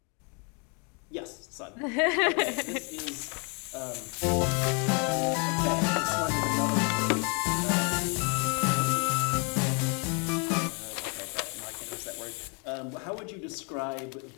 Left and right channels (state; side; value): quieter; right; 35.7 dB